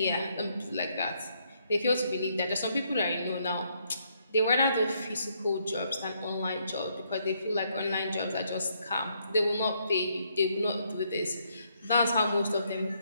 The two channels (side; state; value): both; inverted; correlation -0.73